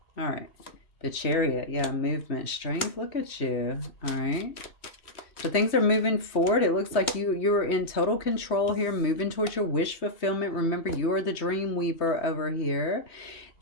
All right. The Chariot. Yeah, movement, strength. Look at you. All right. So things are moving forward. It looks like you're in total control here, moving towards your wish fulfillment. Remember, you are the dream weaver over here.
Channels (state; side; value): late; right; 3.1 ms